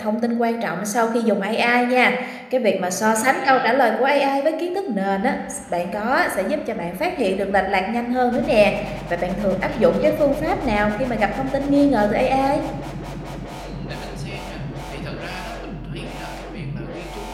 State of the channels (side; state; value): both; identical; correlation 1.00